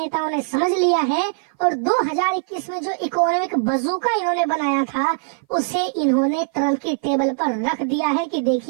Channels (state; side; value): silent; left; 59 dB below the other